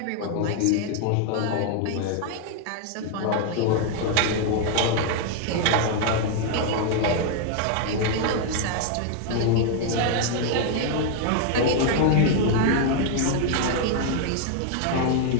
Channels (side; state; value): both; different; correlation 0.00